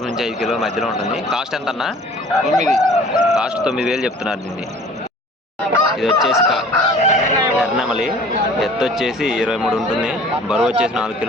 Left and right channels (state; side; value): normal; both; correlation 0.49